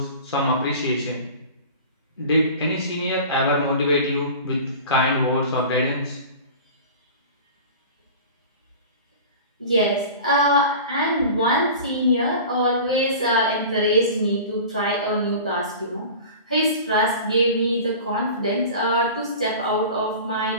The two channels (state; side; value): inverted; both; correlation -0.37